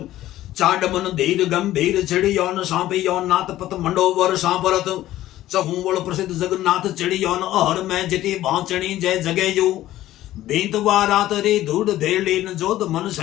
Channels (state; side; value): quieter; right; 14.4 dB